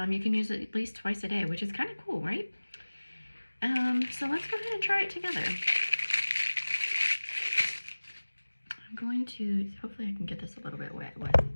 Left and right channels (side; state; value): both; inverted; correlation -1.00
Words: can use it at least twice a day, which is kind of cool, right? So let's go ahead and try it together. I'm going to, hopefully I can get this a little bit wet with,